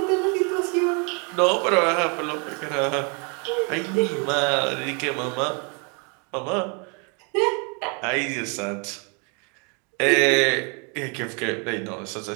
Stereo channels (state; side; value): quieter; left; 34.7 dB